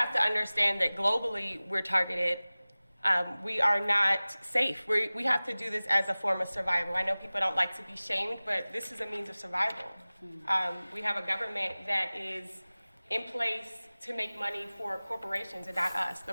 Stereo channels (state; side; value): inverted; both; correlation -0.99